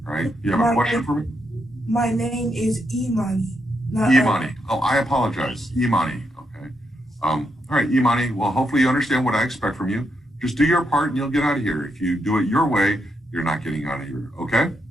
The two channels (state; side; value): normal; both; correlation 0.81